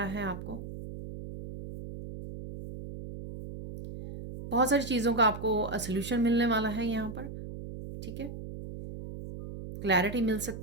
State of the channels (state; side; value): noise; right; hum, 10 dB below the sound